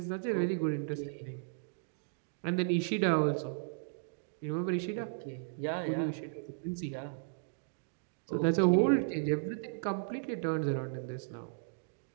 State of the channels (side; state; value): left; silent; digital silence